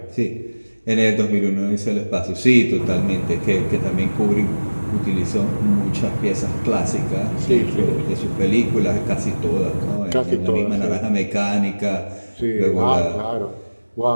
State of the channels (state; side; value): inverted; both; correlation -1.00